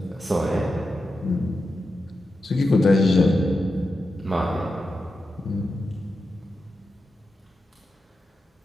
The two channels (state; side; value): normal; both; correlation 0.89